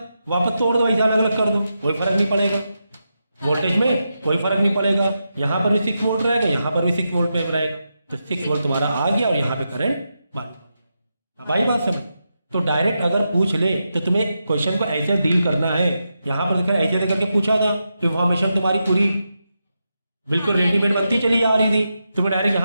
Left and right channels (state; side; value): inverted; both; correlation -0.87